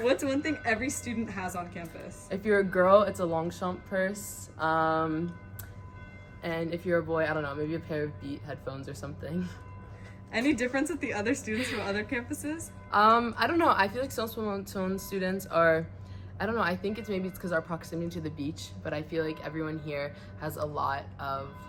What's one thing every student has on campus? If you're a girl, it's a Longchamp purse. And if you're a boy, I don't know, maybe a pair of Beat headphones or something. Any difference with the other students from other campuses? I don't know. I feel like Sciences Po Menton students are, I don't know, I think it's because our proximity to the beach, but I feel like everyone here has a lot of,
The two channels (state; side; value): identical; both; correlation 1.00